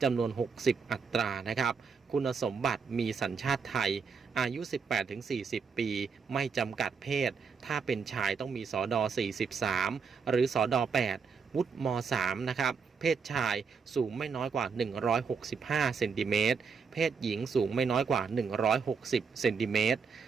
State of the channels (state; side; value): quieter; left; 5.7 dB